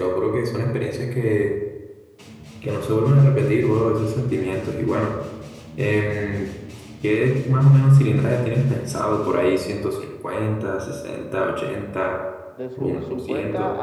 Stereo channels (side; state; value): both; identical; correlation 1.00